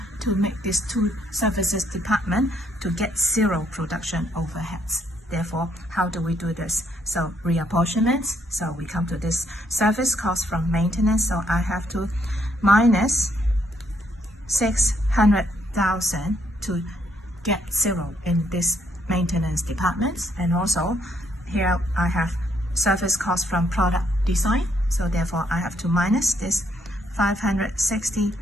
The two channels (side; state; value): both; normal; correlation 0.72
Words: to make these two services department to get zero production overheads. Therefore, how do we do this? So reapportionment, so we come to this service cost from maintenance, so I have to minus 600,000 to get zero in this maintenance department. And also here I have service cost from product design, so therefore I have to minus this